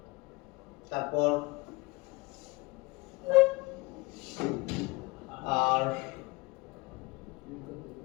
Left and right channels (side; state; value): right; quieter; 23.4 dB